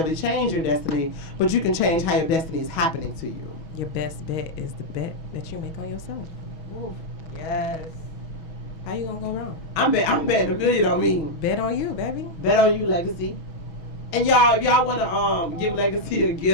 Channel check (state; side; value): late; right; 6.2 ms